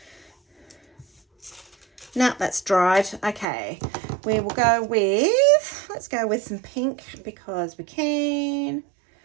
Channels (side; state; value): left; drops out; at 3.5 s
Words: No, that's dried. Okay, we will go with, let's go with some pink because we can.